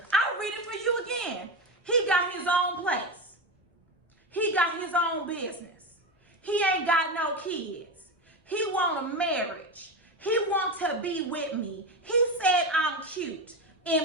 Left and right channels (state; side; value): normal; both; correlation 0.19